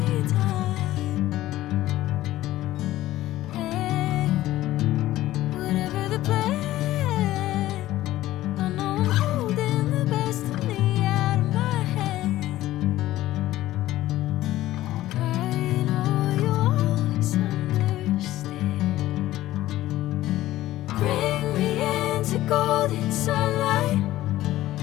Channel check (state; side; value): quieter; right; 15.2 dB